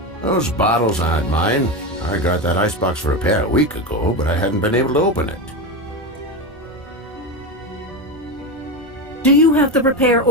Those bottles aren't mine. I got that icebox for repair a week ago, but I hadn't been able to open it. Do you have the repair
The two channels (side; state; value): both; normal; correlation 0.17